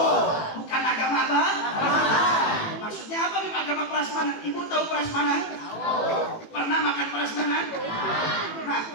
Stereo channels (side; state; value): right; late; 18 ms